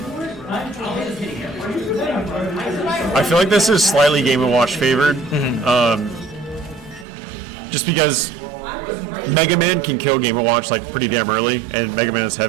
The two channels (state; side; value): drops out; left; at 7.1 s